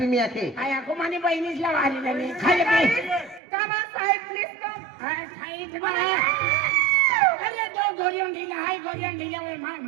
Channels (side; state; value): left; drops out; at 3.4 s